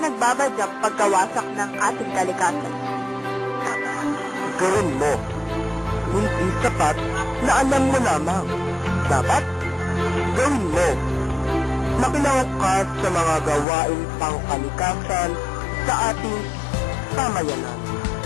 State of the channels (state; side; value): drops out; right; at 13.7 s